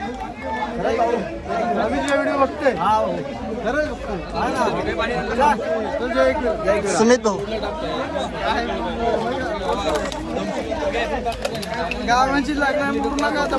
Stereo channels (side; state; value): both; identical; correlation 1.00